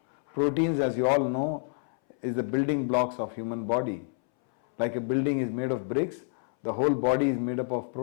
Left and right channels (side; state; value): right; silent; 59 dB below the other